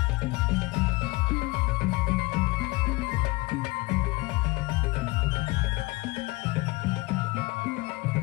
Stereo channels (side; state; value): right; quieter; 22.8 dB